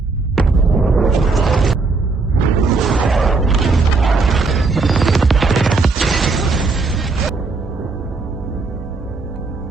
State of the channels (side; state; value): left; quieter; 4.0 dB